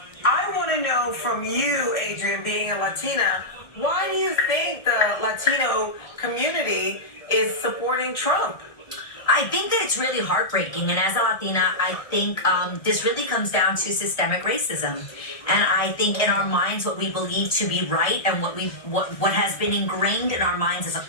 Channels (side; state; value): right; late; 1.6 ms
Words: I want to know from you, Adrian, being a Latina, why do you think the Latino community is supporting Trump? I think that it's really heartbreaking, and as a Latina, I think this really comes down to systemic racism. And I think in our minds, what we believe to be right, and what has been ingrained in our minds as a